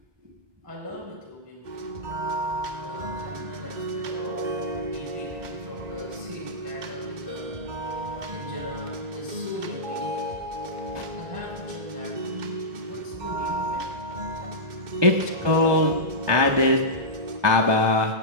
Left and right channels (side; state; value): left; late; 1.2 ms